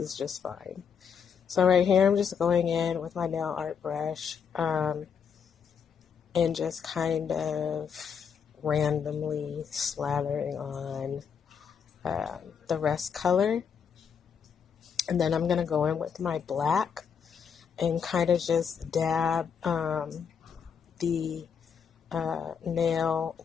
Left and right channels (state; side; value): quieter; right; 6.9 dB